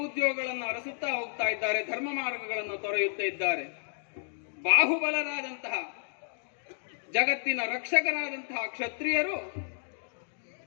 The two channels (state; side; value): silent; right; digital silence